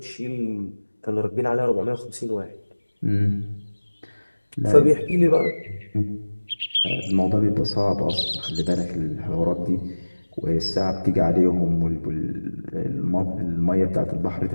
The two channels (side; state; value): both; inverted; correlation -1.00